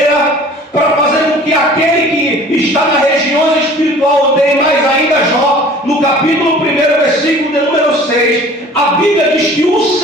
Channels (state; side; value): normal; both; correlation 0.47